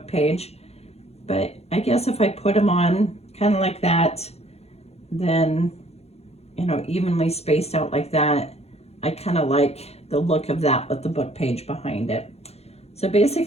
page. But I guess if I put them on kind of like that, then evenly spaced out like that, I kind of like the look of that with the book page behind it. So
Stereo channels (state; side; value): late; right; 0.30 ms